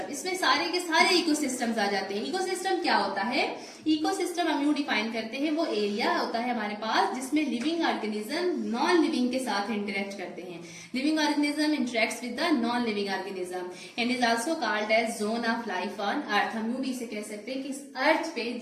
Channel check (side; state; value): both; identical; correlation 1.00